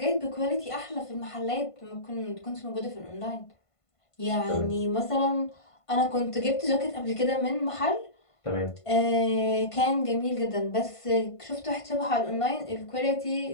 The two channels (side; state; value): right; late; 1.5 ms